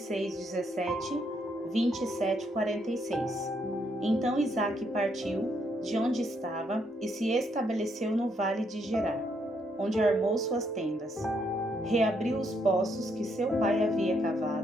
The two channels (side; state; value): both; normal; correlation 0.74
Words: 17, 27, 46. Então Isaque partiu de onde estava e se estabeleceu no vale de Gerar, onde armou suas tendas. Reabriu os poços que seu pai havia